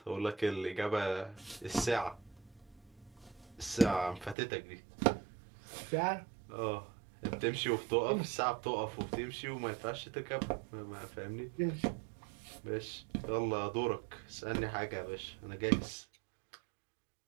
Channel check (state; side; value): drops out; left; at 4.4 s